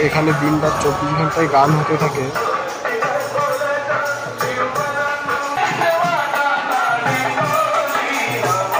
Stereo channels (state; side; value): identical; both; correlation 1.00